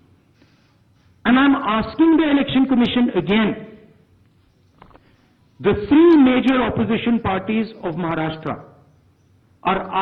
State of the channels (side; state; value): both; identical; correlation 1.00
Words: And I am asking the Election Commission again. The three major opposition parties of Maharashtra are